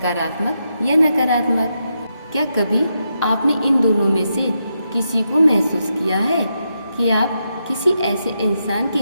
या नकारात्मक। क्या कभी आपने इन दोनों में से किसी को महसूस किया है कि आप किसी ऐसे इंसान के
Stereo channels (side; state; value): both; inverted; correlation -0.84